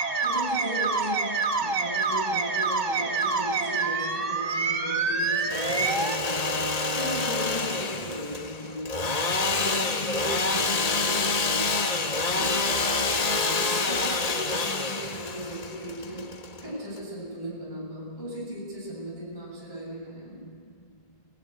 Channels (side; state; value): right; late; 1.8 ms